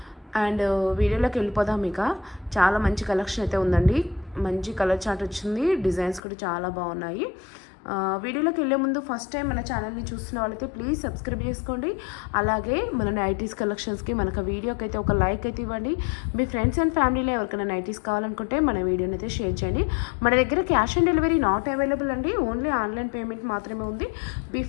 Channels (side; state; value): right; drops out; at 6.2 s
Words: అండ్ వీడియోలోకి వెళ్ళిపోదాం. ఇక చాలా మంచి కలెక్షన్ అయితే ఉందండి. మంచి కలర్ చార్ట్ వచ్చింది. డిజైన్స్ కూడా చాలా బాగున్నాయి. వీడియోలోకి వెళ్ళే ముందు ఫస్ట్ టైం మన ఛానల్ని చూస్తున్న వాళ్ళైతే ప్లీజ్ సబ్స్క్రైబ్ చేసుకోండి. అలాగే మన నైటీస్ కలెక్షన్స్కి మనకు వీడియోకి అయితే ఒక లైక్ అయితే ఇవ్వండి. మీ ఫ్రెండ్స్ అండ్ ఫ్యామిలీలో ఎవరికైనా నైటీస్ కావాలనుకుంటే మన వీడియోని అయితే షేర్ చేయండి. మన దగ్గర cash on delivery not available అండి. ఓన్లీ ఆన్లైన్ పేమెంట్ మాత్రమే ఉంది.